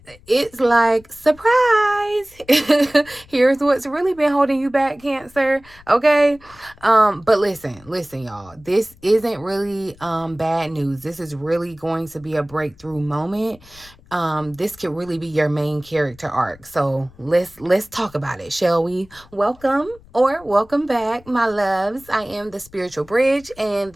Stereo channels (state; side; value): noise; left; rumble, 25 dB below the sound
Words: it's like, surprise. Here's what's really been holding you back, Cancer. Okay. But listen, y'all. This isn't really bad news. This is really going to be a breakthrough moment. This could really be your main character arc. So let's talk about it, shall we? Welcome back, my loves. I am the Spiritual Bridge, and